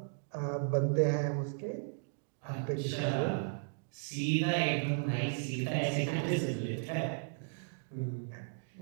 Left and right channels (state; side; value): silent; left; digital silence